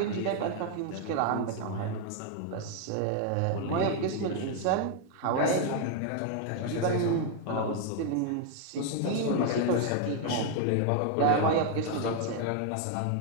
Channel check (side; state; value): both; different; correlation 0.00